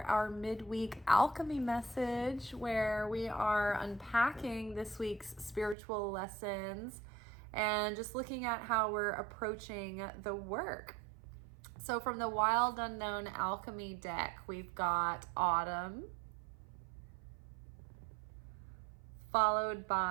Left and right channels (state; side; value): drops out; left; at 5.8 s